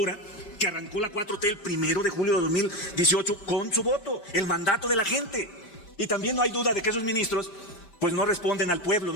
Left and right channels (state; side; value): late; right; 5.0 ms